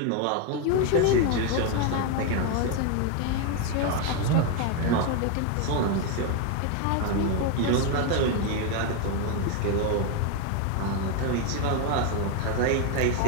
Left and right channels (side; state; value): both; different; correlation 0.01